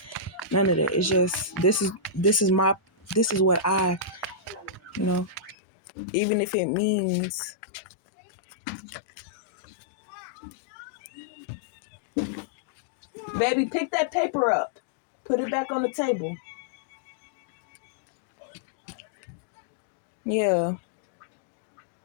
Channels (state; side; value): drops out; right; at 5.6 s